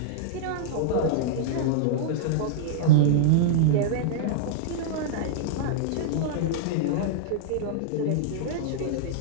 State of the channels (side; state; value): both; different; correlation -0.02